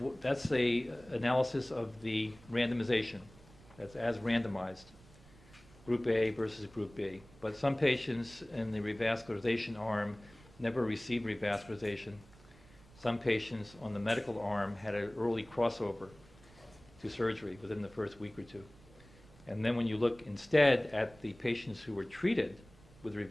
that's the analysis of the randomization. That's as randomized, Group A versus Group B. But some patients in the revascularization arm never received revascularization. Some patients on the medical arm had an early crossover to surgery within the first week or two. And then when you look instead at the patients who were treated with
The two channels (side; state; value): right; noise; rumble, 24 dB below the sound